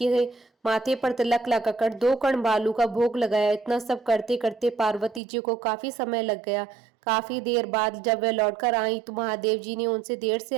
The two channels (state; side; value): drops out; left; at 5.2 s